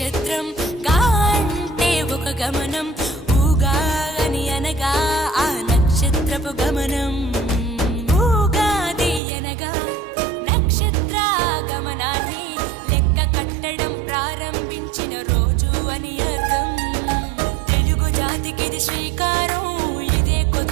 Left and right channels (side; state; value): left; drops out; at 9.2 s